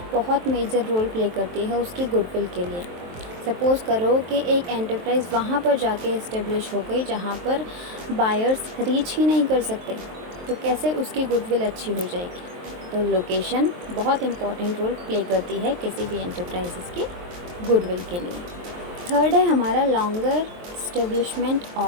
बहुत मेजर रोल प्ले करती है उसकी गुडविल के लिए। सपोज़ करो कि एक एंटरप्राइज़ वहाँ पर जाके इस्टेब्लिश हो गई जहाँ पर बायर्स रीच ही नहीं कर सकते, तो कैसे उसकी गुडविल अच्छी हो जाएगी? तो लोकेशन बहुत इम्पॉर्टेंट रोल प्ले करती है किसी भी एंटरप्राइजेस की गुडविल के लिए। थर्ड है हमारा लॉन्गर इस्टेब्लिशमेंट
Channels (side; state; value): left; late; 23 ms